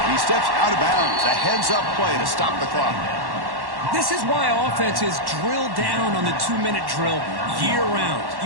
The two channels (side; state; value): left; late; 1.1 ms